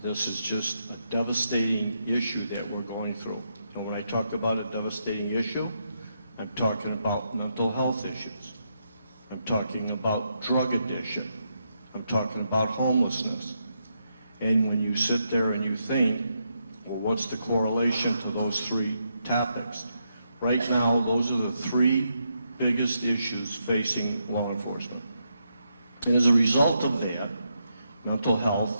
This is just a devastating issue that we're going through. And when I talk about a devastating issue, I'm talking about mental health issues. I'm talking about drug addiction. I'm talking about homelessness. And when you sit there and you think, well, what's the correlation to those three topics? Right now, those are the three biggest issues facing law enforcement. And as a result of that, mental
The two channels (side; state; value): both; inverted; correlation -0.81